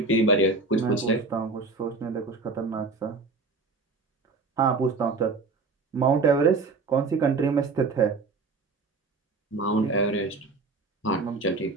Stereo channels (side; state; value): left; quieter; 4.0 dB